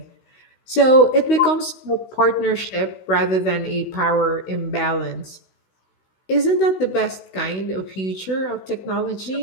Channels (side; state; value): right; late; 16 ms